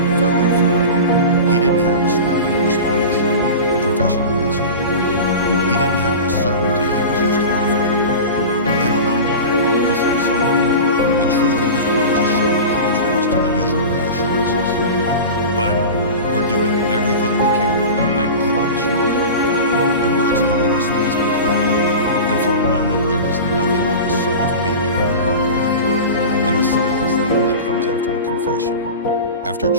felt like forever, he didn't have a scripted response, a professional answer. He didn't have the certainty he was used to offering. I don't know, Mark, he said softly. The truth of his words is sharp contrast to the usual reassurances. But we're doing everything we can now, I promise you that. The words hung in the space between them, and for a moment there was nothing but the soft beeping of the heart monitor, and the silence that only comes after a confession, after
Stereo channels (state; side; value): inverted; both; correlation -0.31